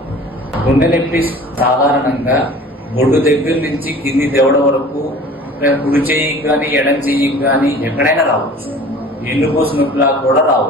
గుండె నొప్పి సాధారణంగా బొడ్డు దగ్గర నుంచి కింది దవడ వరకు కుడి చెయ్యికి కానీ ఎడం చెయ్యికి కానీ ఎక్కడైనా రావచ్చు. ఎన్నుపూస నొప్పిలా కూడా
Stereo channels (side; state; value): both; normal; correlation 0.44